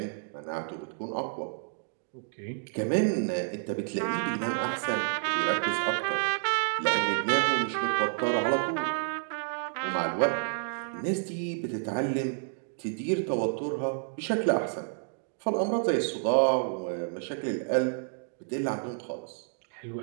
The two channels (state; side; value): silent; left; digital silence